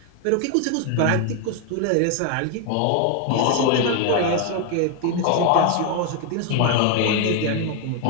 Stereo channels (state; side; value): different; both; correlation 0.01